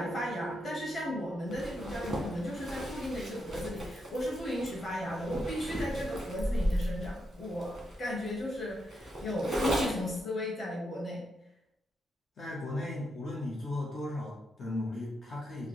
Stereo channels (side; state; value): both; normal; correlation 0.82